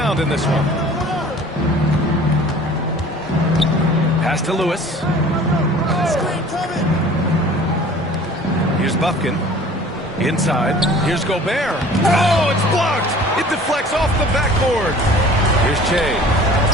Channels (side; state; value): both; normal; correlation 0.47